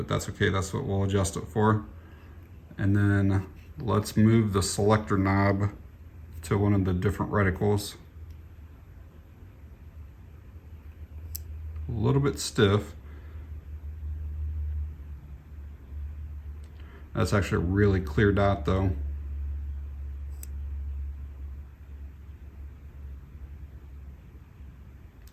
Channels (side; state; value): both; identical; correlation 1.00